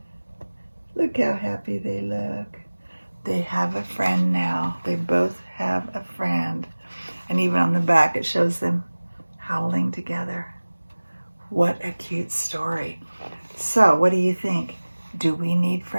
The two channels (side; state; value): both; inverted; correlation -1.00